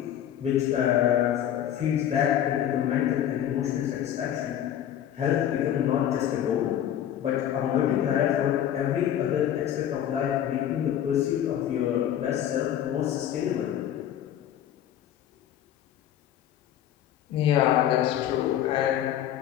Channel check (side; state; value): right; quieter; 10.7 dB